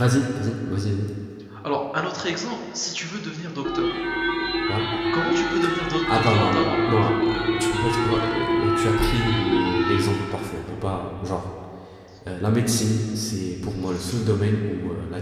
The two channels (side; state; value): both; identical; correlation 1.00